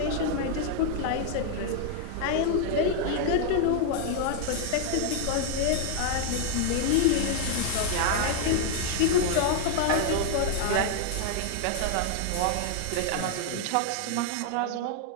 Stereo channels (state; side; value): different; both; correlation 0.00